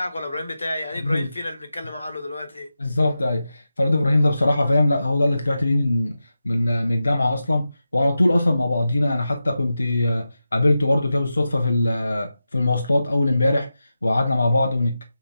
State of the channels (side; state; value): both; inverted; correlation -0.91